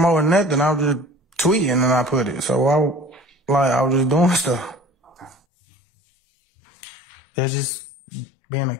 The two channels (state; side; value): drops out; right; at 5.4 s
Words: nothing, I was just tweeting and I put it. So I was just doing stuff. Okay. It's just being a